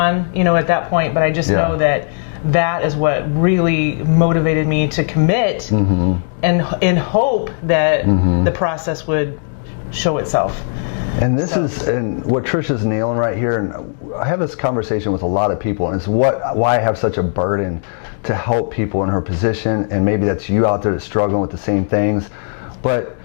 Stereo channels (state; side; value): silent; right; digital silence